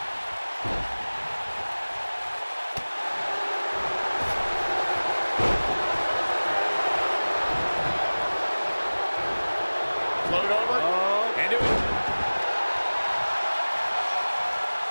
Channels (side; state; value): both; inverted; correlation -1.00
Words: Float over. Into it.